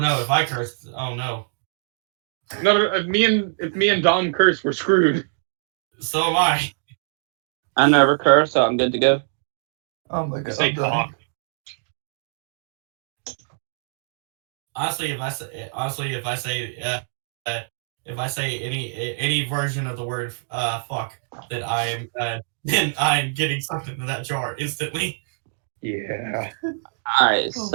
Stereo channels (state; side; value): silent; left; digital silence